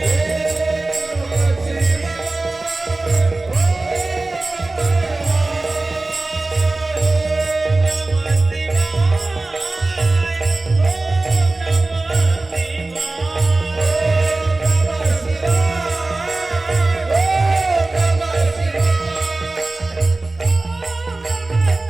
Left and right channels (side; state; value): left; quieter; 3.1 dB